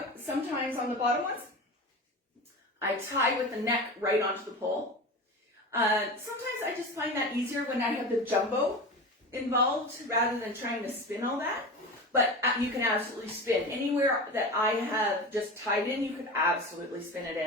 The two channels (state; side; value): normal; both; correlation 0.29